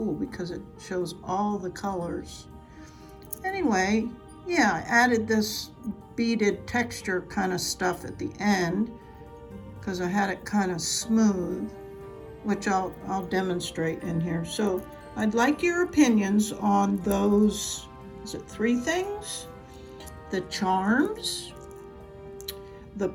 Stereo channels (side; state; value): both; identical; correlation 1.00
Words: because it shows all the colors. Anyway, yeah, I added this beaded texture kind of stuff at the end because I had it kind of smooth, which I'll demonstrate in here. So I'd like your opinions on those, is it 3 things? The charms, the